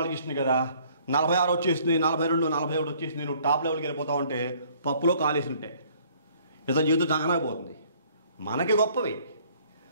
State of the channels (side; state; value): both; inverted; correlation -0.59